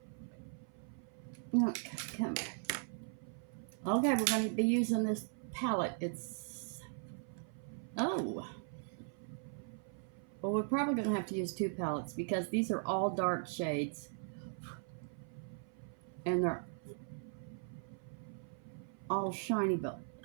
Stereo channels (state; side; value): silent; left; 52 dB below the other